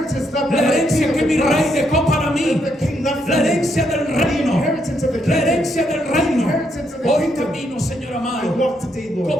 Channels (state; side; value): normal; both; correlation 0.76